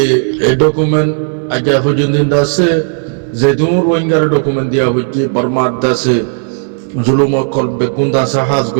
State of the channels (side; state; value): left; silent; digital silence